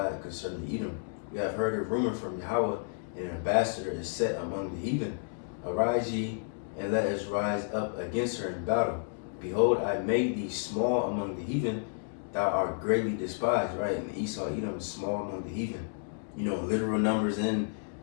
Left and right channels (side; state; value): right; silent; digital silence